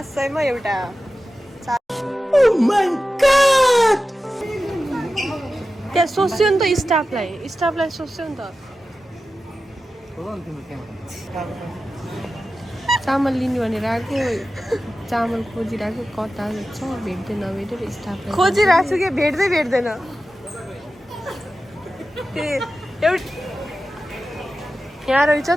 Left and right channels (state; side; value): normal; both; correlation 0.93